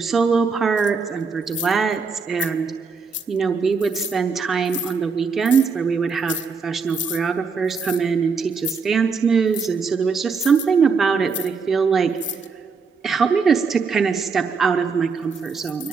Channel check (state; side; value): quieter; left; 5.1 dB